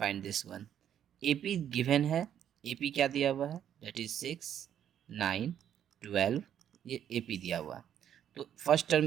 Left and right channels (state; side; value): quieter; left; 9.8 dB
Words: this one. AP given है, एपी क्या दिया हुआ है, दैट इज 6, 9, 12, ये एपी दिया हुआ है। तो फर्स्ट